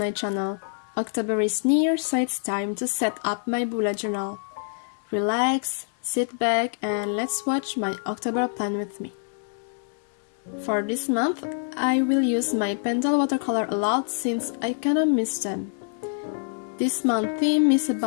channel. October is near, so it's time to set up my bullet journal. Relax, sit back and let's watch my October plan with me. For this month, I will use my Pentel watercolor a lot since I kinda miss them. This month theme is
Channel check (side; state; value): right; silent; 61 dB below the other